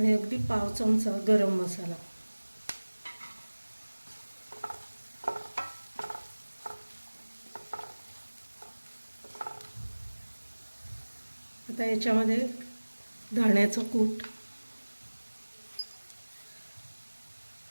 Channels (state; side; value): inverted; both; correlation -1.00